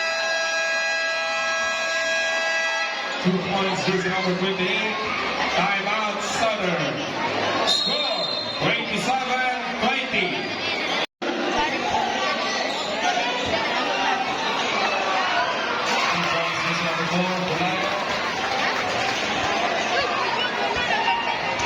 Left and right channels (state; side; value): identical; both; correlation 1.00